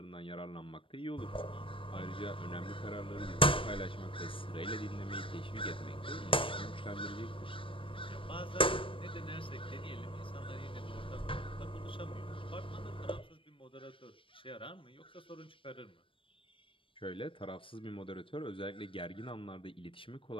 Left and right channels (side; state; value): right; late; 0.25 ms